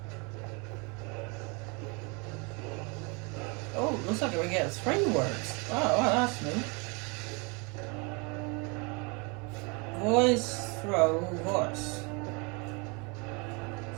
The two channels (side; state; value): left; quieter; 31.1 dB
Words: Oh, looks like we get 3 words. Oh, well, that's new. Voice, throw, voice.